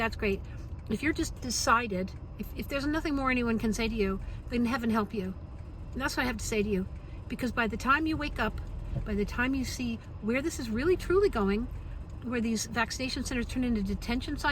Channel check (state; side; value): identical; both; correlation 1.00